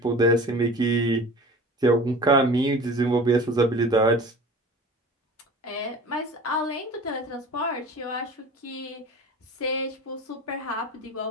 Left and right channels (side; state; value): both; normal; correlation 0.39